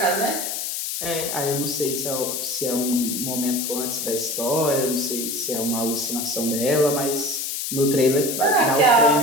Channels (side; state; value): left; noise; hiss, 3 dB below the sound